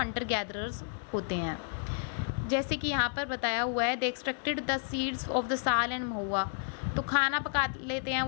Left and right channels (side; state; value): right; silent; digital silence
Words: गैदरर्स होते हैं। जैसे कि यहाँ पर बताया हुआ है, they extracted the seeds of the sal and mahua, तो खाना पका लेते हैं